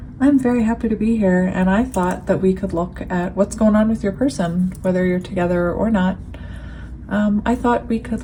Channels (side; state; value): both; identical; correlation 1.00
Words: I'm very happy to be here. And I thought that we could look at what's going on with your person, whether you're together or not. I thought we could